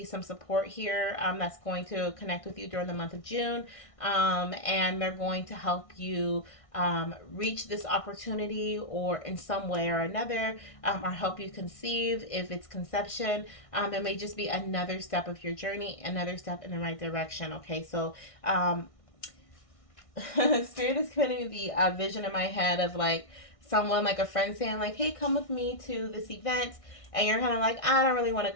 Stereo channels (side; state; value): right; late; 1.6 ms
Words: some support here, that's going to connect with you during the month of June, and they're going to help you reach this opportunity or in some way or another, or help you conceive if it's conception. It may just be another step of your journey, another step in the right direction. Okay, so Spirit is putting the vision in my head of like someone, like a friend saying like, hey, come with me to this event, and you're kind of like, I don't really want to